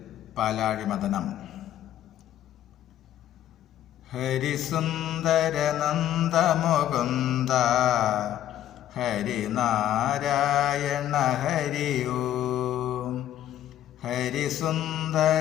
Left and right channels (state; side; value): quieter; right; 11.9 dB